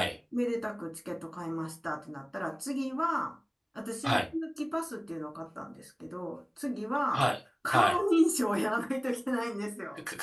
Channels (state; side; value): identical; both; correlation 1.00